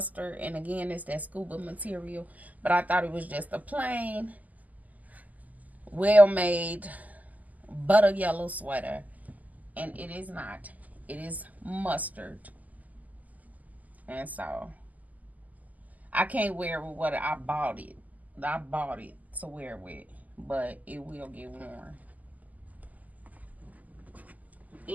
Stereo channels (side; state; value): left; late; 0.079 ms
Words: and again it's that scuba material. But I thought it was just a plain, well made butter yellow sweater, and it is not. It is mustard, and so I can't wear it with what I bought it. I bought it to wear with, but it will get worn.